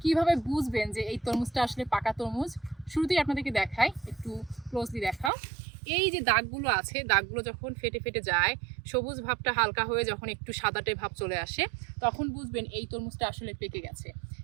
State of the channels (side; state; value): left; drops out; at 5.3 s